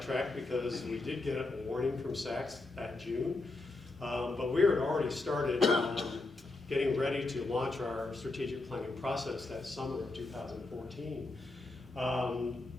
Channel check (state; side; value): quieter; right; 3.2 dB